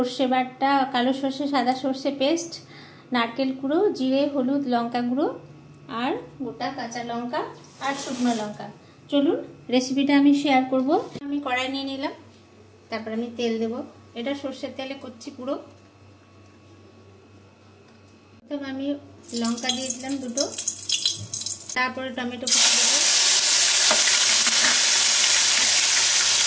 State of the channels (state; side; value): identical; both; correlation 1.00